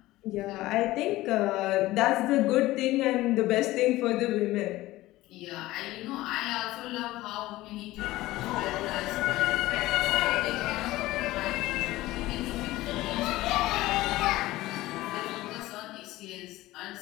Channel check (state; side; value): quieter; right; 17.5 dB